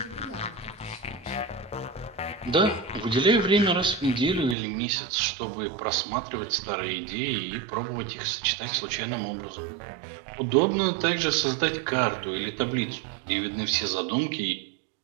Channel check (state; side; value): drops out; left; at 4.5 s